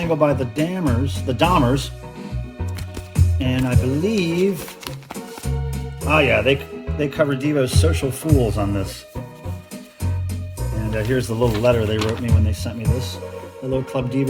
by the Dahmers, and I believe, oh yeah, they covered Devo's Social Fools on this. And here's the little letter they wrote me when they sent me this. Hello Club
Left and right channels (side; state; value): both; identical; correlation 1.00